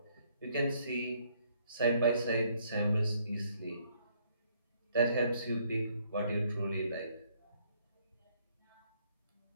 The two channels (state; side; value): inverted; both; correlation -0.67